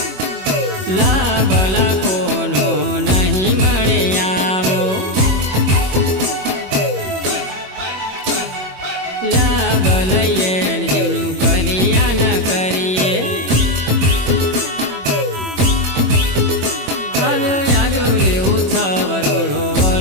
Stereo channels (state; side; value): late; left; 21 ms